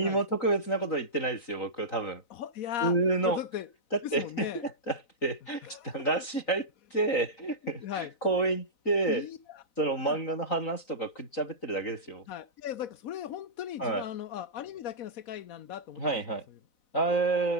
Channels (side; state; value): right; late; 3.9 ms